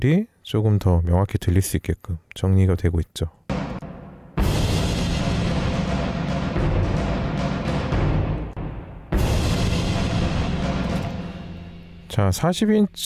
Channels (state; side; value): identical; both; correlation 1.00